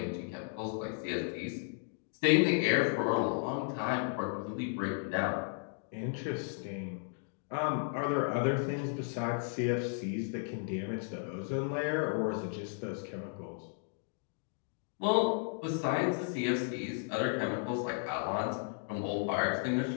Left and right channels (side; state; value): right; silent; 55 dB below the other